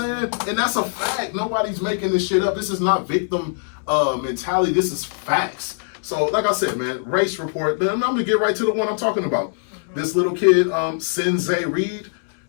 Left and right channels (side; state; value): right; silent; 64 dB below the other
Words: And that's a fact. Nobody's making this shit up. This is not victim mentality. This is facts. So, like I said, man, race report. I'm gonna get right to the one I'm talking about. This little kid, JReed.